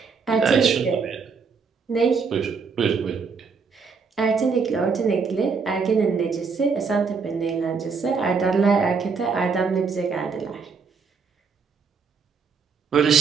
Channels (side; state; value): left; quieter; 5.3 dB